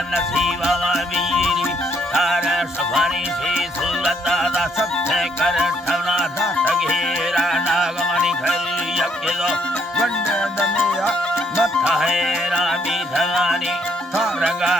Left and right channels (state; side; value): normal; both; correlation 0.70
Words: नसीबा वीरी तारा सफारी से सुलता दा सत्य कर ठवना दा तगेरा नागमणि घर यज्ञो वंदे दमेया मथा है रामी धगानी